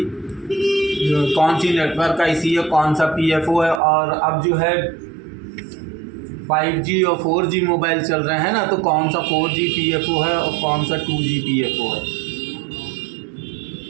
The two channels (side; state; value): left; drops out; at 3.8 s